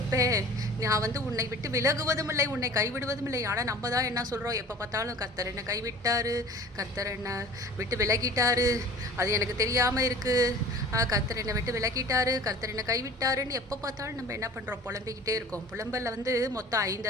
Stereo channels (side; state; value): both; normal; correlation 0.43